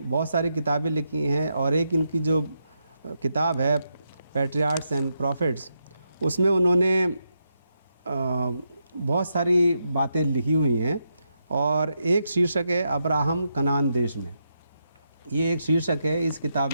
सारी किताबें लिखी हैं, और एक इनकी जो किताब है पैट्रियार्क्स एंड प्रॉफिट्स, उसमें उन्होंने बहुत सारी बातें लिखी हुई हैं, और एक शीर्षक है अब्राहम कनान देश में। ये एक शीर्षक है इस किताब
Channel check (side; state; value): both; inverted; correlation -0.83